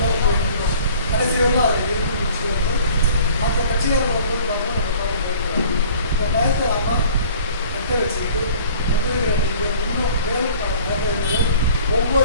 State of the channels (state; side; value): inverted; both; correlation -0.49